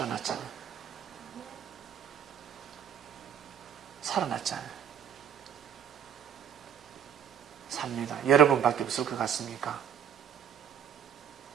살아났잖아요. 삽니다. 여러분밖에 없을 것 같습니까?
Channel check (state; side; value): quieter; left; 8.6 dB